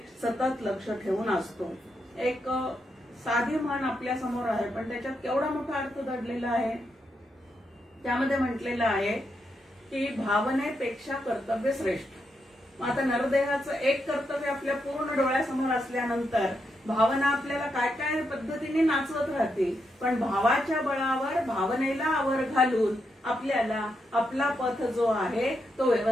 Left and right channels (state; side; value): normal; both; correlation 0.82